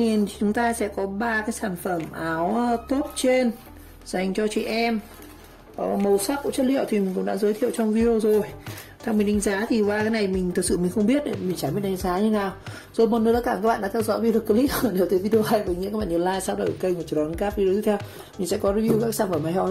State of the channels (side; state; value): both; identical; correlation 1.00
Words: thì chúng ta sẽ có 3 cái sản phẩm áo top trên dành cho chị em. Màu sắc của chất liệu thì mình cũng đã giới thiệu trong video rồi. Theo mình đánh giá thì qua cái này mình thực sự mình không biết, mình chẳng biết đánh giá như nào. Rồi một lần nữa cảm ơn các bạn đã theo dõi video clip. Nếu thấy video hay với những các bạn nhớ like, subscribe kênh và chờ đón các video tiếp theo. Mình sẽ có review các sản phẩm hay ho